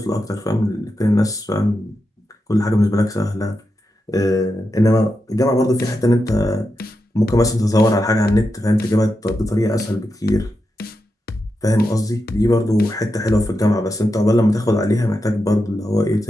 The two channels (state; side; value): normal; both; correlation 0.87